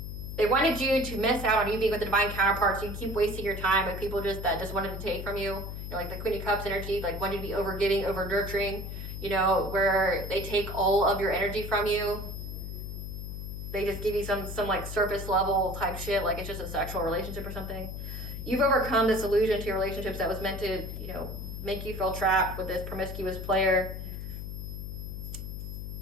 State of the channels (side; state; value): left; noise; hum, 7 dB below the sound